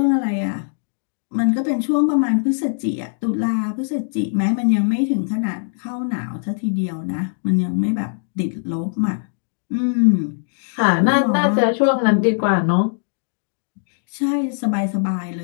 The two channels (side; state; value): right; silent; digital silence